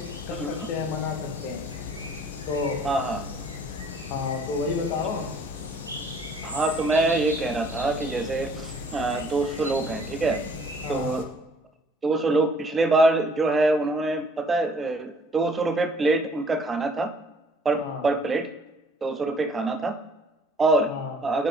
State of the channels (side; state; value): both; normal; correlation 0.58